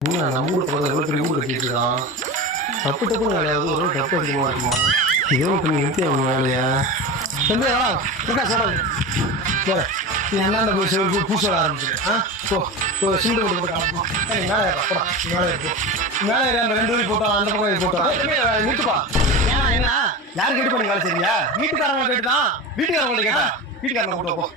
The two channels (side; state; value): both; normal; correlation 0.26